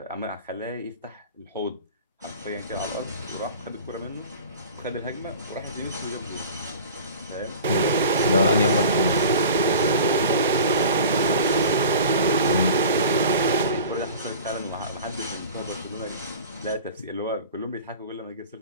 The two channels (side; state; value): both; inverted; correlation -0.39